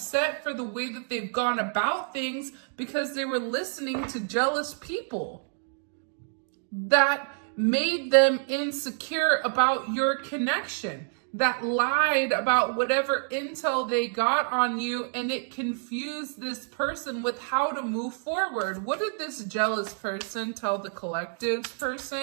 for the way that they've gone about things because they were listening to jealous people that made them insecure about your connection, that lied about whatever intel they got on you, and it confused this person with how to move forward. What did this jealous person tell the collective's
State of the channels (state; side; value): silent; left; 59 dB below the other